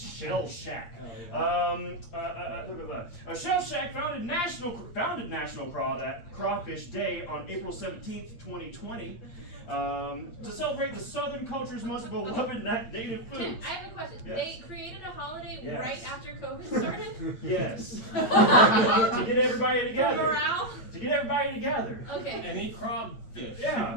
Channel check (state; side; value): late; right; 8.7 ms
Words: Shack. Shell Shack founded National Crawfish Day on April 17th, 2020. To celebrate the Southern culture's most beloved native foods. I have a question. Yes. They created a holiday Yes. right after COVID started? Yes. To get everybody For together. morale? To get everybody together. Okay. And eat crawfish. Yeah.